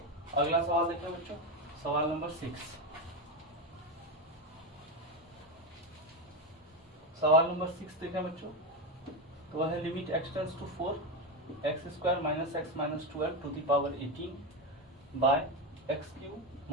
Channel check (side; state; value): both; normal; correlation 0.13